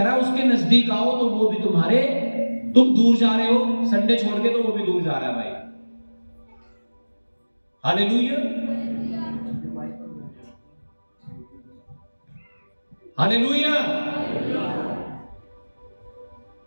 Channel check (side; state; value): both; inverted; correlation -1.00